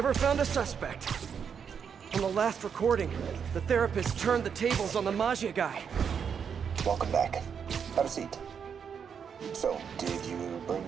found a suspect. On the last recording, the therapist turned the tables on the Maggia guy. Welcome back. Have a seat. So, did you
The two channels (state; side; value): quieter; left; 7.1 dB